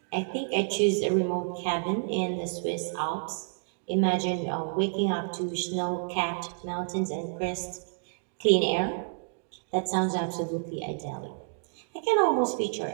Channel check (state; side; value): silent; left; digital silence